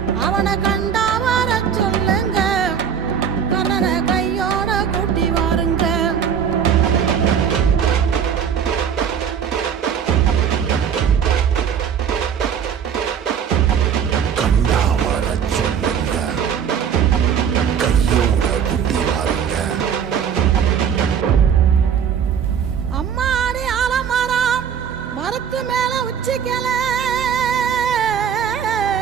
அவனை கண்டா வர சொல்லுங்க, கர்ணனை கையோட கூட்டி வாருங்க. அம்மாடி ஆலமரம் மரத்து மேல உச்சிக்கல,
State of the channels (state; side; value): quieter; left; 7.8 dB